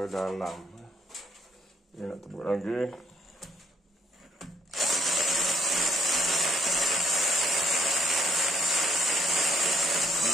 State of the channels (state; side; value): normal; both; correlation 0.66